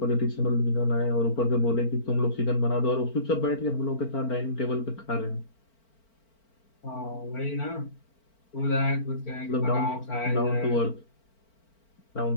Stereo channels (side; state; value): right; late; 4.4 ms